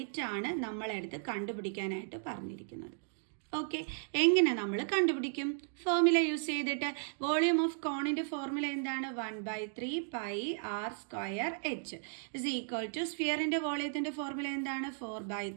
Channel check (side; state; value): left; silent; digital silence